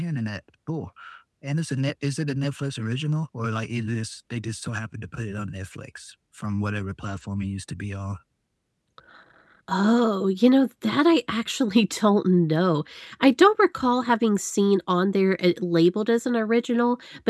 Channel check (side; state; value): both; identical; correlation 1.00